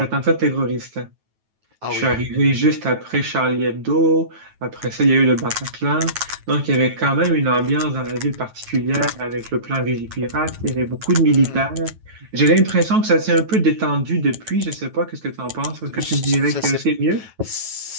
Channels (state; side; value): late; left; 9.2 ms